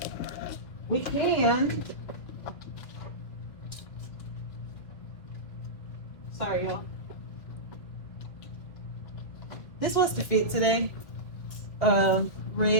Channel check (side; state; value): right; late; 2.5 ms